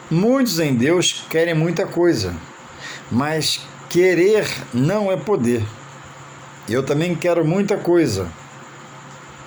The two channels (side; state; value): both; identical; correlation 1.00